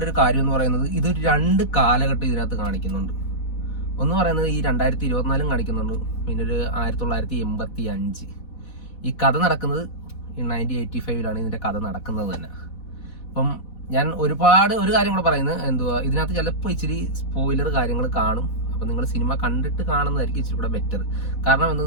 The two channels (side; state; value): right; late; 4.1 ms